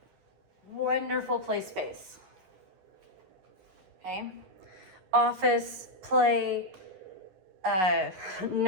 Wonderful play space. Okay. Office, play,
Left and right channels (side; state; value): left; late; 11 ms